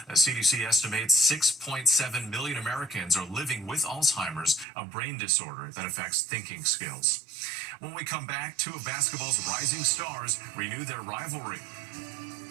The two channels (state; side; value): drops out; left; at 4.7 s